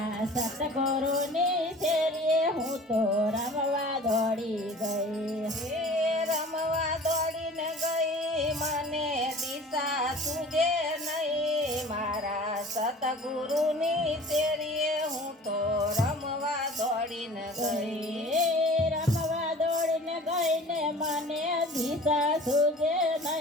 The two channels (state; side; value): normal; both; correlation 0.44